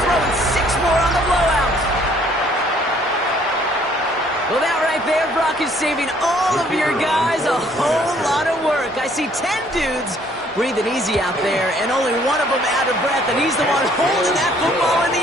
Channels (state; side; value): normal; both; correlation 0.61